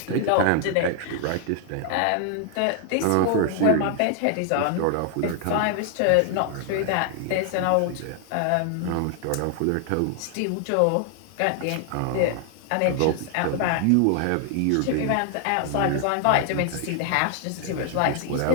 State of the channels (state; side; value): different; both; correlation 0.00